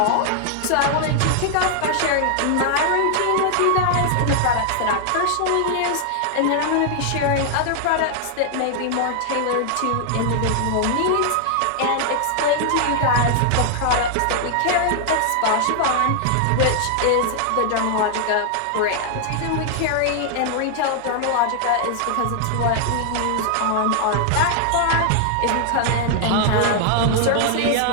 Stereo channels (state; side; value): different; both; correlation 0.00